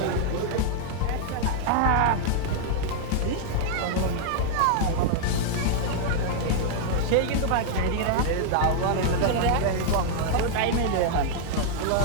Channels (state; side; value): different; both; correlation -0.01